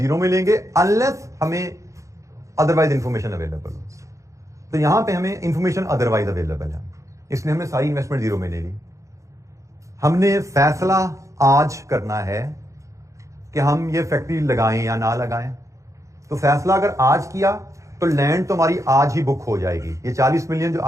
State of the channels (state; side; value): late; left; 0.15 ms